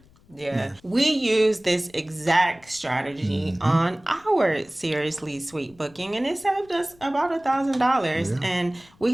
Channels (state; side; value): noise; left; rumble, 29 dB below the sound